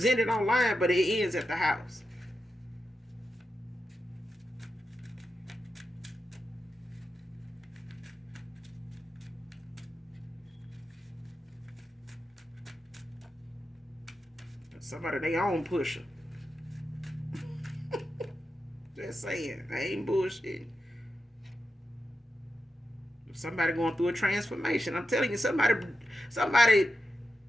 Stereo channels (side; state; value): both; normal; correlation 0.89